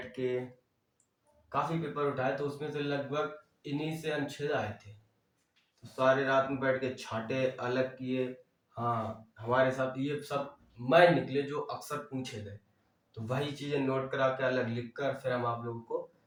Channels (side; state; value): both; identical; correlation 1.00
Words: के, काफी पेपर उठाए, तो उसमें से लगभग इन्हीं से अनुच्छेद आए थे। तो सारे रात में बैठ के छाटे, अलग किए। हाँ, हमारे साथ ये सब मैं निकले जो अक्सर पूछे गए, तो वही चीजें नोट करा के अलग लिख कर फिर हम आप लोगों को